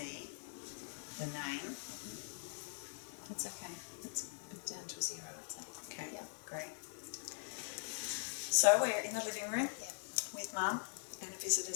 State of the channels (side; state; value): right; silent; digital silence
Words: the name? It's okay. It's down to a 0, I'd say. Okay, Yeah. great. So we're in the living room Yeah. with Mum and a